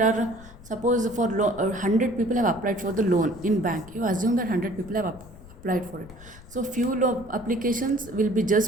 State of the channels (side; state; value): left; noise; rumble, 19 dB below the sound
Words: are, suppose for 100 people have applied for the loan in bank. You assume that 100 people have applied for it. So few applications will be